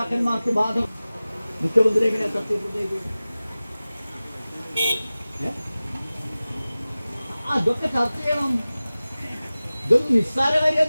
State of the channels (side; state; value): both; inverted; correlation -0.97